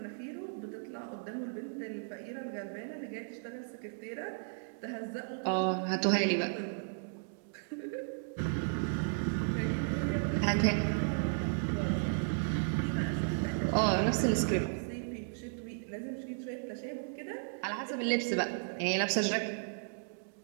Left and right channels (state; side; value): silent; left; digital silence